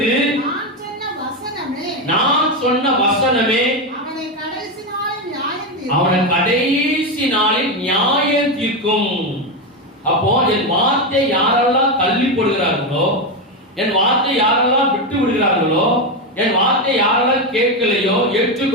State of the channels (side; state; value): both; normal; correlation 0.11